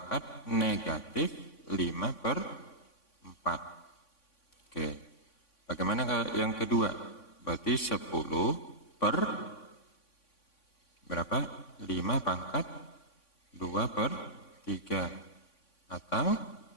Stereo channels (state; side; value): late; right; 3.5 ms